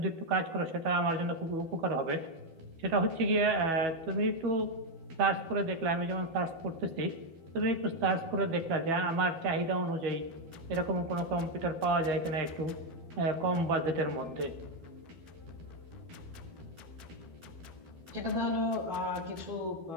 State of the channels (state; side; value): late; left; 12 ms